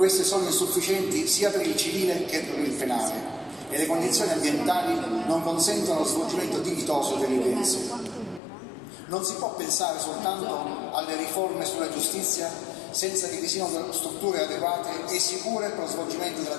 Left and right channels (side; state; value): right; drops out; at 8.4 s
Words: sono insufficienti sia per il civile che per il penale e le condizioni ambientali non consentono lo svolgimento dignitoso delle udienze. Non si può pensare soltanto alle riforme sulla giustizia senza che vi siano strutture adeguate e sicure per lo svolgimento